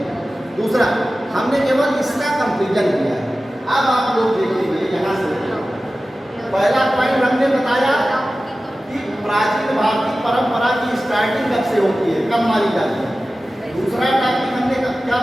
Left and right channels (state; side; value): normal; both; correlation 0.95